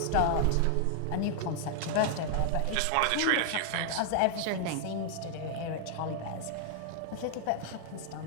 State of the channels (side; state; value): both; different; correlation -0.01